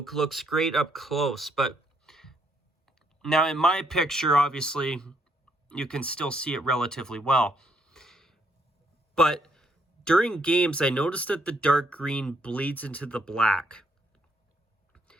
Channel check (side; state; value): both; normal; correlation 0.72